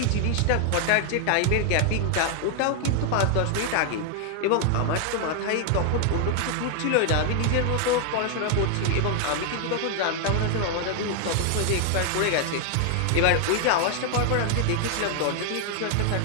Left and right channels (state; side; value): different; both; correlation 0.00